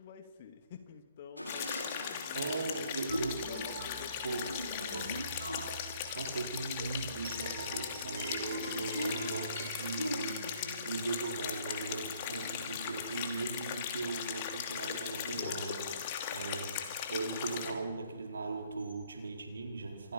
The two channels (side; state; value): both; inverted; correlation -0.60